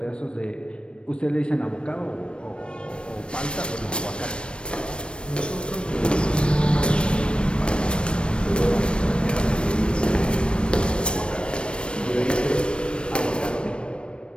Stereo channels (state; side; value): late; right; 0.057 ms